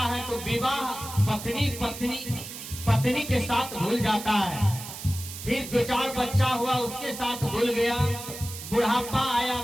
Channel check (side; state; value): right; noise; hiss, 10 dB below the sound